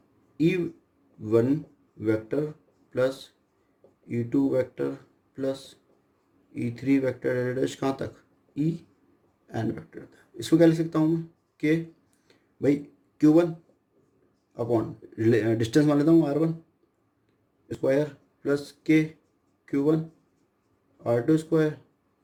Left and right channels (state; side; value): identical; both; correlation 1.00